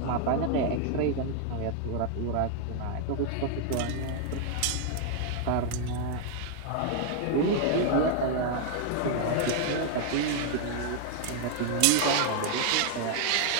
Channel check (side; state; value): both; different; correlation 0.00